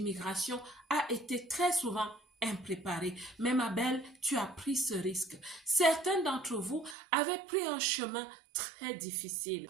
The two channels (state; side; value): drops out; left; at 7.0 s